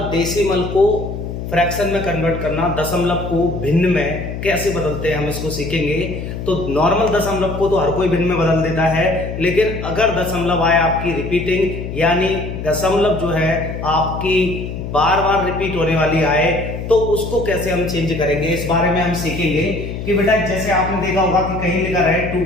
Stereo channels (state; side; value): noise; left; hum, 7 dB below the sound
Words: डेसिमल को फ्रैक्शन में कन्वर्ट करना, दशमलव को भिन्न में कैसे बदलते हैं हम इसको सीखेंगे। तो नॉर्मल दशमलव को तो हर कोई भिन्न में बदल देता है, लेकिन अगर दशमलव आए आपकी रिपीटिंग, यानी दशमलव जो है आपकी बार बार रिपीट होने वाली आए, तो उसको कैसे हम चेंज करेंगे, इस बारे में हम सीखेंगे। कि बेटा जैसे आपने देखा होगा कि कहीं लिखा है